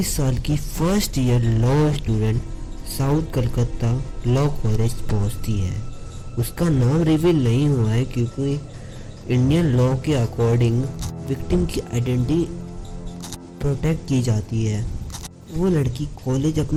साल की first year law student south Calcutta law college पहुंचती है। उसका नाम reveal नहीं हुआ है क्योंकि इंडियन लॉ के अकॉर्डिंग विक्टिम की आइडेंटिटी प्रोटेक्ट की जाती है। वो लड़की कॉलेज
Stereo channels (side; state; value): both; identical; correlation 1.00